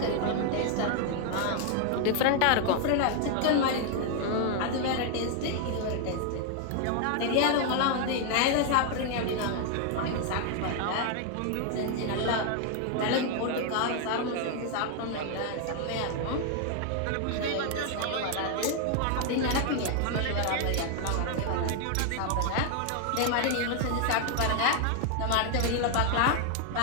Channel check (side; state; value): both; different; correlation 0.00